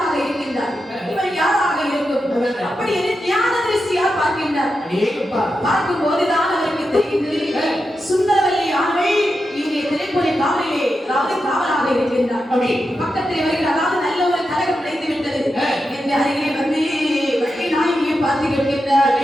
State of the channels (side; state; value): both; normal; correlation 0.88